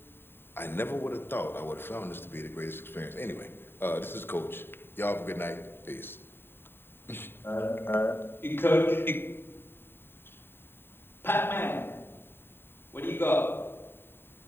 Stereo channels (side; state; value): right; late; 0.11 ms